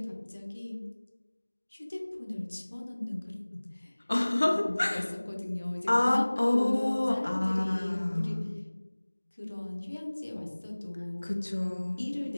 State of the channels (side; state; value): both; inverted; correlation -1.00